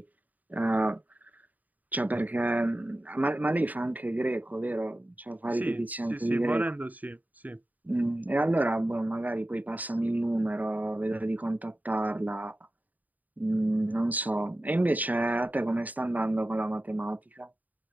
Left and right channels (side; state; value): left; late; 0.079 ms